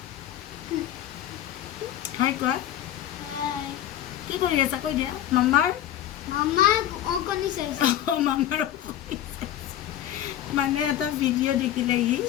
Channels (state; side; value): quieter; right; 11.9 dB